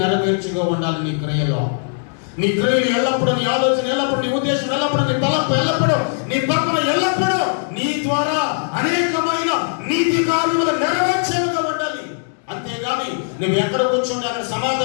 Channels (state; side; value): silent; right; digital silence